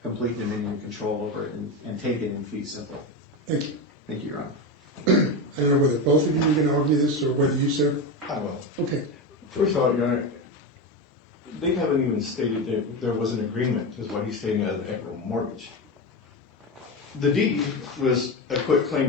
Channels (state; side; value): normal; both; correlation 0.18